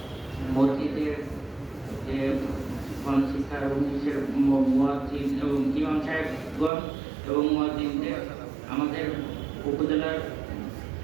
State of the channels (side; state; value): left; drops out; at 6.7 s